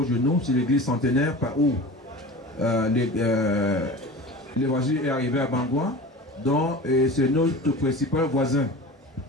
de nous, c'est l'église centenaire par où l'évangile est arrivé à Bangwa. Donc c'est notre principal voisin.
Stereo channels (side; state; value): both; normal; correlation 0.35